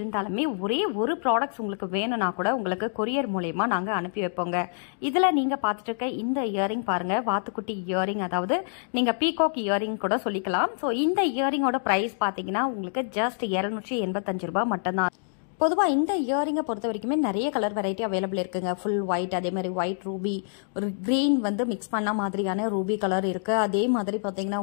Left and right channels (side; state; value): right; silent; digital silence